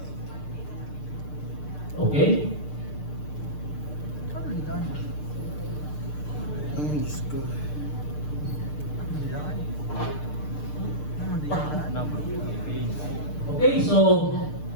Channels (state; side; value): late; right; 6.7 ms